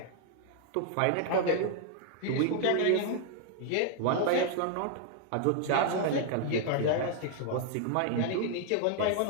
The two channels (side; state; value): both; different; correlation 0.00